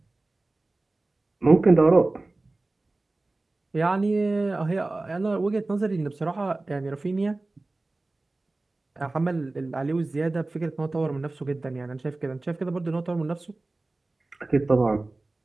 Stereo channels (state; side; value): quieter; left; 3.1 dB